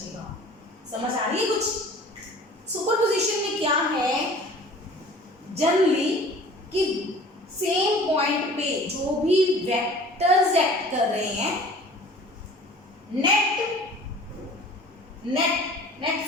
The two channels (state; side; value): normal; both; correlation 0.46